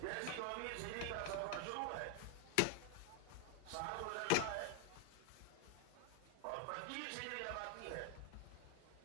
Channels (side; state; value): both; different; correlation 0.00